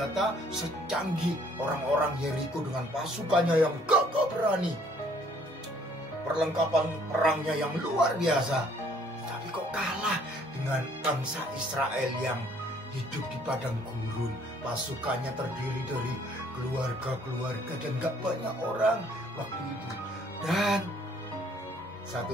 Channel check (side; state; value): both; normal; correlation 0.61